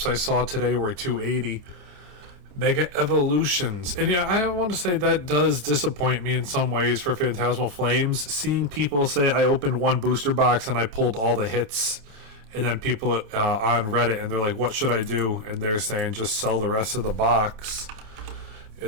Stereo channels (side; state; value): left; late; 29 ms